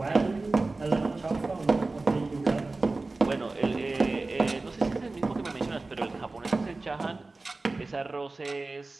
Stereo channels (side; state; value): left; quieter; 3.4 dB